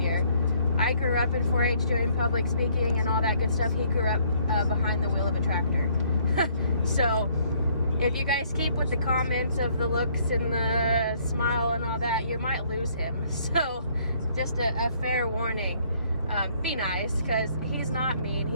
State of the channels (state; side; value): inverted; both; correlation -0.64